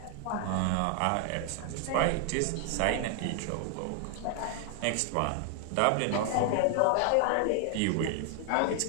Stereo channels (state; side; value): different; both; correlation 0.00